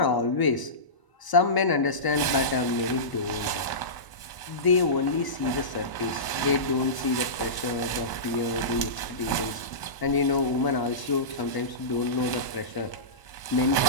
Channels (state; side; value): late; right; 1.0 ms